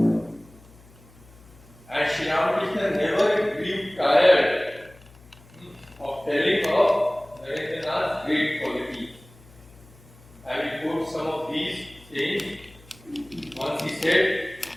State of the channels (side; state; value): left; noise; hum, 24 dB below the sound